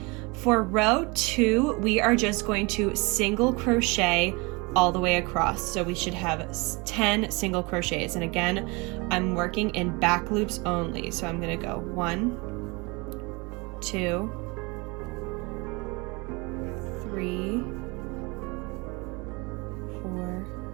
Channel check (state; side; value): quieter; left; 27.3 dB